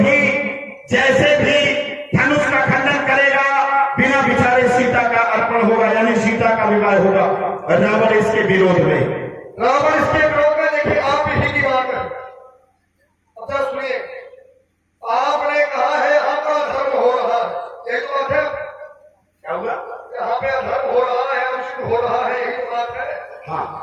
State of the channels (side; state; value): both; identical; correlation 1.00